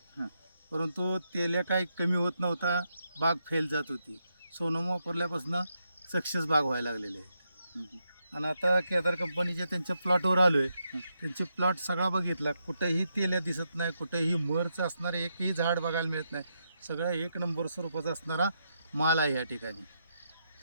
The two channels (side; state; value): both; inverted; correlation -0.82